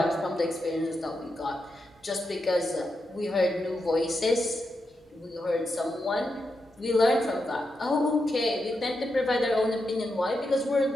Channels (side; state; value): both; normal; correlation 0.86